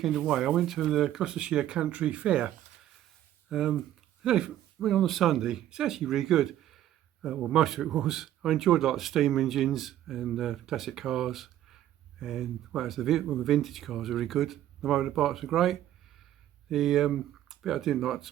away. I went to the Gloucestershire Country Fair. Went on a Sunday. It's actually really good. Well, most of it was. I enjoyed like the steam engines and classic cars, and the vintage cars are really good. The motorbikes are great. The bit I didn't like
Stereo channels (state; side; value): quieter; left; 12.4 dB